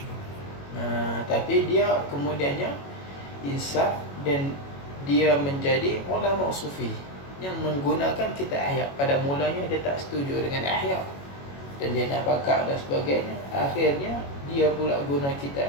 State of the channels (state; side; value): late; right; 21 ms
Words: Tapi dia kemudiannya insaf dan dia menjadi ulama sufi yang menggunakan kitab Ihya. Pada mulanya dia tak setuju dengan Ihya dan dia nak bakar dan sebagainya. Akhirnya dia pula guna kitab